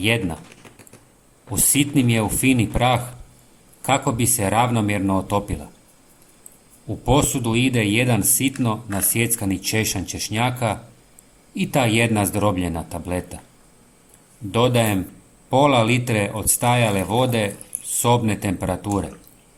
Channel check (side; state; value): both; identical; correlation 1.00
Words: Usitnim je u fini prah kako bi se ravnomjerno otopila. U posudu ide 1 sitno nasjeckani češanj češnjaka i ta 1 zdrobljena tableta. Dodajem pola litre odstajale vode sobne temperature.